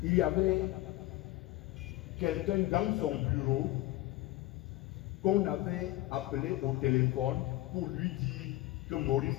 Il y avait quelqu'un dans son bureau qu'on avait appelé au téléphone pour lui dire que Maurice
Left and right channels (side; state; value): right; quieter; 17.3 dB